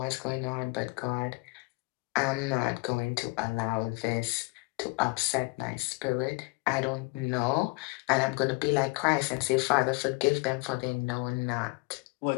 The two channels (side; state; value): right; quieter; 26.8 dB